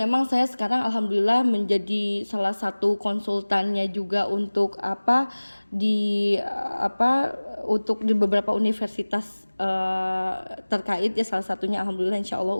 saya sekarang alhamdulillah menjadi salah satu konsultannya juga untuk untuk di beberapa universitas terkait ya, salah satunya alhamdulillah insyaallah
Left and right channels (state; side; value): inverted; both; correlation -1.00